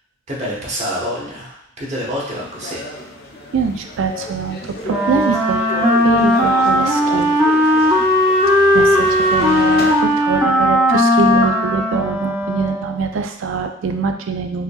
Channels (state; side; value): normal; both; correlation 0.49